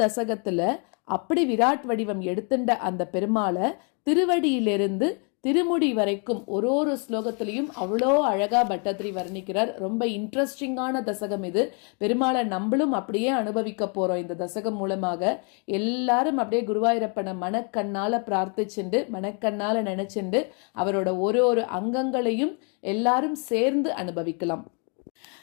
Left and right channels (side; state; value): right; quieter; 38.1 dB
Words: தசகத்துல அப்படி விராட் வடிவம் எடுத்துட்ட அந்த பெருமாளை திருவடியிலிருந்து திருமுடி வரைக்கும் ஒரு ஸ்லோகத்திலையும் அவ்வளோ அழகா பட்டத்திரி வர்ணிக்கிறார். ரொம்ப இன்ட்ரெஸ்டிங்கான தசகம் இது. பெருமாளை நம்மளும் அப்படியே அனுபவிக்க போறோம். இந்த தசகம் மூலமாக எல்லாரும் அப்படியே குருவாயூரப்பனை மனக்கண்ணால பிரார்த்திச்சுண்டு மனக்கண்ணால நினைச்சுண்டு அவரோட ஒரு அங்கங்களையும் எல்லாரும் சேர்ந்து அனுபவிக்கலாம்.